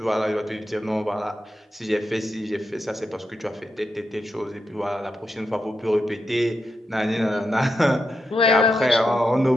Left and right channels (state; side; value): normal; both; correlation 0.86